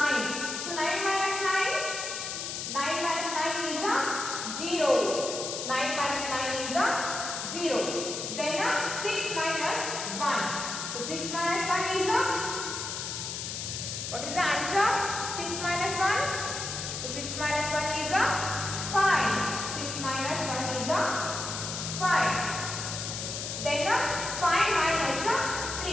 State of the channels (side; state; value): left; noise; hiss, 5 dB below the sound